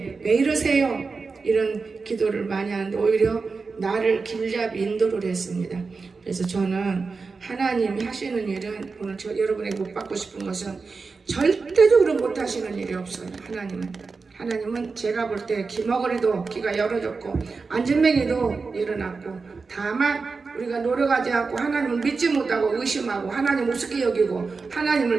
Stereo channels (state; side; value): quieter; left; 4.5 dB